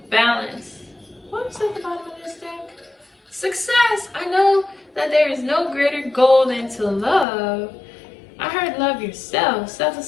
balance. What was at the bottom of this deck? Success. I know that there is no greater goal than to love. I heard love yourself,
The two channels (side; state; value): right; drops out; at 7.2 s